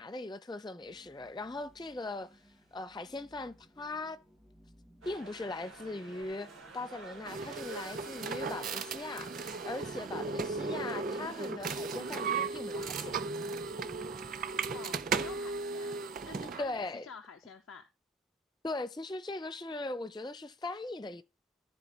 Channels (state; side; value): normal; both; correlation 0.43